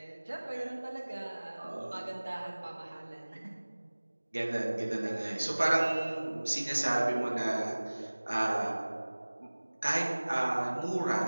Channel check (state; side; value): inverted; both; correlation -1.00